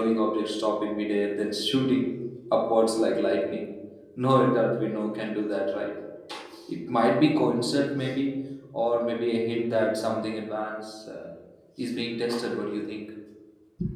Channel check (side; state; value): both; identical; correlation 1.00